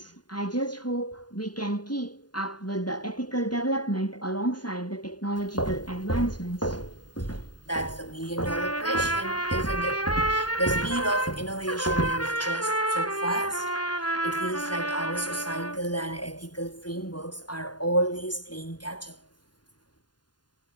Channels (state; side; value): late; right; 0.70 ms